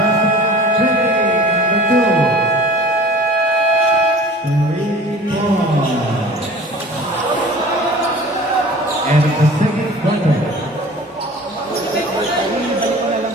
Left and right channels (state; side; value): normal; both; correlation 0.43